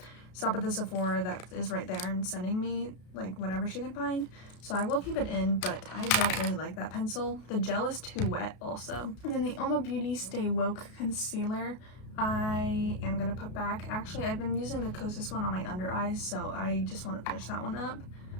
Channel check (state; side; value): late; right; 33 ms